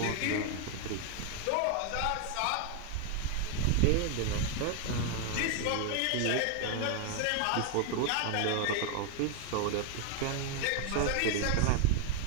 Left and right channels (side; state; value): both; different; correlation 0.01